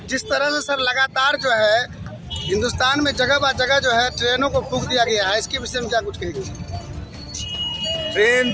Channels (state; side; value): identical; both; correlation 1.00